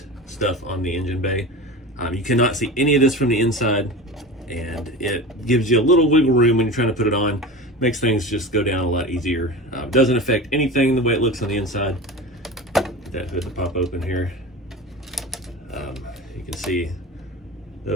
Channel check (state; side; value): normal; both; correlation 0.31